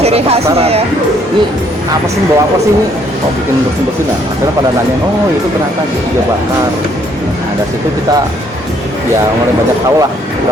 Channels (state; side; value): normal; both; correlation 0.66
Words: Ciri khasnya penasaran. ya. Ini apa sih bawa apa sih ini? Kok bikin bersih-bersih? Nah, akhirnya pada nanya, oh itu ternyata iga bakar. Nah, dari situ kita ya mulai banyak tahu lah,